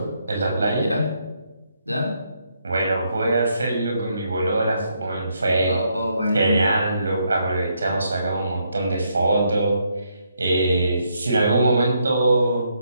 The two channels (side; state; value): both; inverted; correlation -0.76